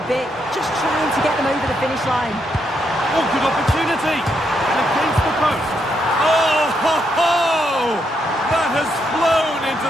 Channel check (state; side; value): normal; both; correlation 0.78